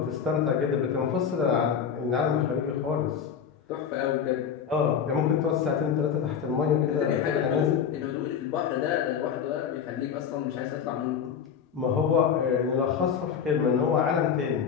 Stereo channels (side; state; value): right; quieter; 7.5 dB